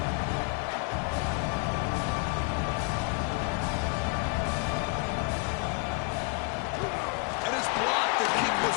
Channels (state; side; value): quieter; right; 29.2 dB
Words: And it's blocked. The kick was